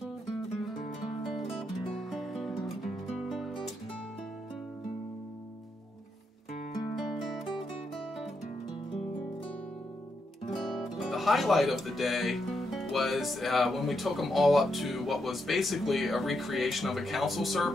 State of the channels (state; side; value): normal; both; correlation 0.81